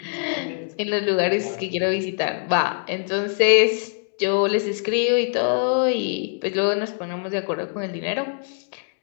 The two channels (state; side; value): silent; right; 61 dB below the other